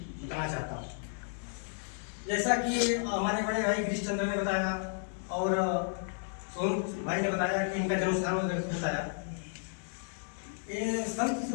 बताना चाहता हूँ। जैसा कि हमारे बड़े भाई गिरीश चंद्र ने बताया और सोनू भाई ने बताया कि इनका जन्म स्थान बताया। ये संत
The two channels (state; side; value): silent; right; digital silence